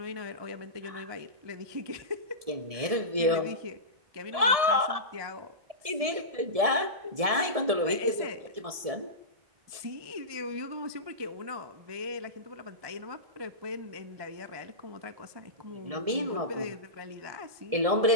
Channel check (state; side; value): late; left; 1.7 ms